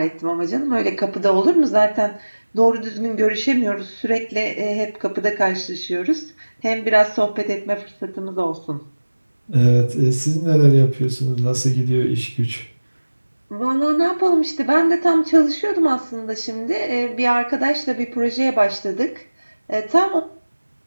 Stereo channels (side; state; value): both; inverted; correlation -1.00